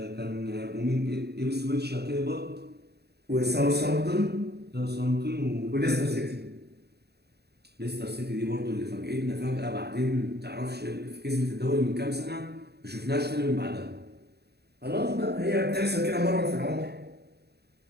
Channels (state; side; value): late; left; 0.48 ms